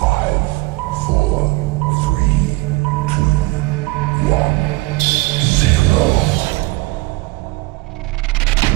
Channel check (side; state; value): left; quieter; 22.8 dB